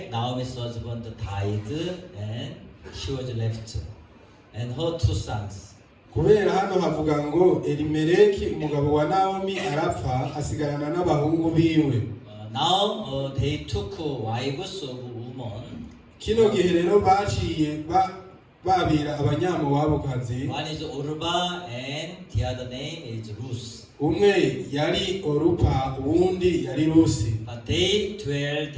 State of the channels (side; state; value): both; identical; correlation 1.00